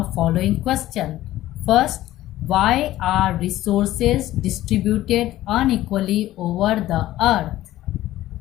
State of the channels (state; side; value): quieter; right; 14.9 dB